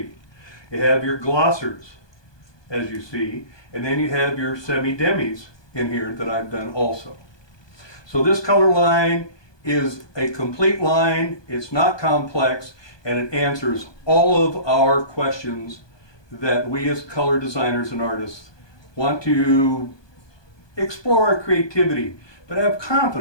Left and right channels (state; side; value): late; right; 1.2 ms